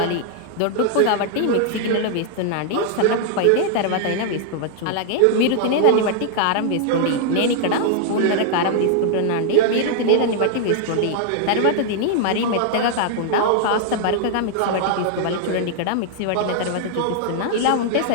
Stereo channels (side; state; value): both; different; correlation -0.01